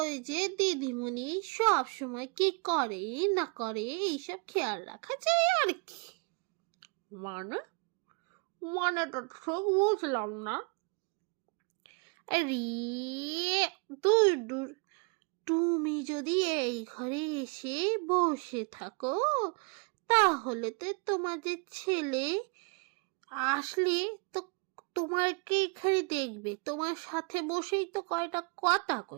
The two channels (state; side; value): quieter; left; 33.7 dB